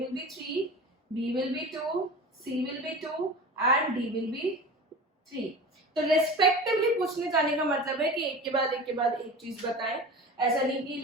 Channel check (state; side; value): normal; both; correlation 0.34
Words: be 3, B will be 2, C will be 2 and D will be 3। तो रेस्पेक्टिवली पूछने जाने का मतलब है कि एक के बाद एक चीज बताएं, ऐसा नहीं कि